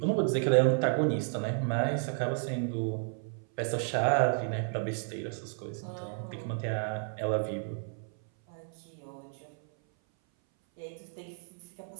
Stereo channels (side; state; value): left; silent; 56 dB below the other